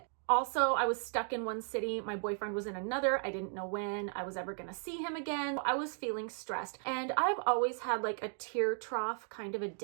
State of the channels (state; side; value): silent; left; 54 dB below the other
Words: Also, I was stuck in one city. My boyfriend was in another. I didn't know when I was ever gonna see him again. I was feeling stressed. And I've always had like a tear trough, kind of a